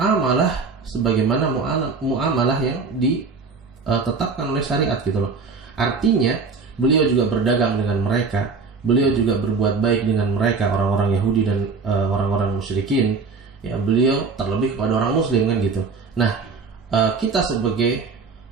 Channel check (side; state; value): left; quieter; 4.7 dB